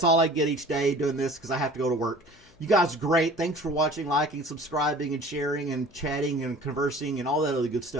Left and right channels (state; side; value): noise; left; hum, 29 dB below the sound